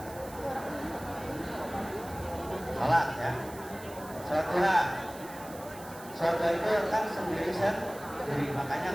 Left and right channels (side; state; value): right; noise; hiss, 17 dB below the sound